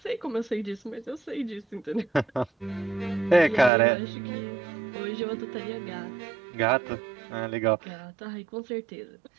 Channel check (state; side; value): drops out; left; at 3.7 s